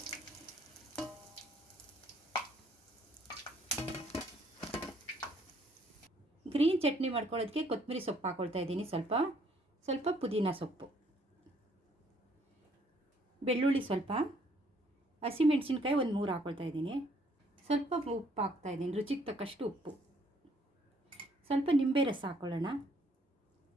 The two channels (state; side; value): normal; both; correlation 0.64